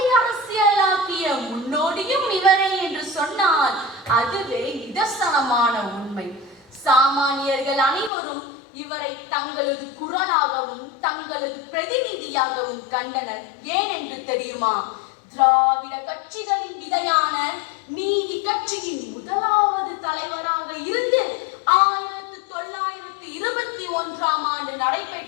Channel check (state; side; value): drops out; right; at 8.1 s